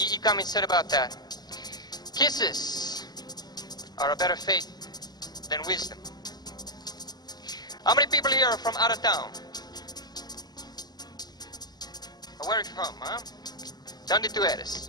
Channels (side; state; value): right; late; 0.20 ms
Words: Cummings said about that? Kisses are a better fate than wisdom. How many people here are from out of town? Where are you from, huh? ¿Dónde tú